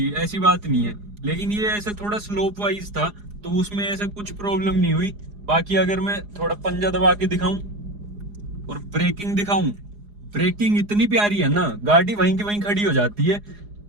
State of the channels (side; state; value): left; late; 4.8 ms